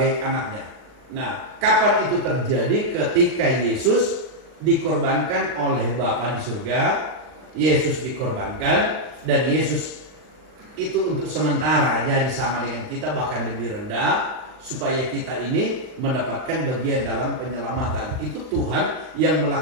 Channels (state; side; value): late; left; 39 ms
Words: anaknya. Nah, kapan itu terjadi? Ketika Yesus dikorbankan oleh Bapa di surga. Yesus dikorbankan, dan Yesus itu untuk sementara jadi sama dengan kita, bahkan lebih rendah, supaya kita ini mendapatkan bagian dalam penyelamatan. Itu Tuhan yang